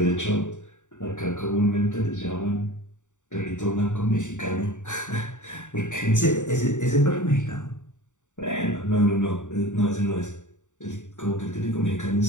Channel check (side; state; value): right; late; 0.85 ms